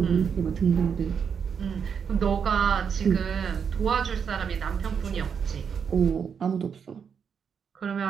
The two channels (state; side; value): quieter; left; 6.9 dB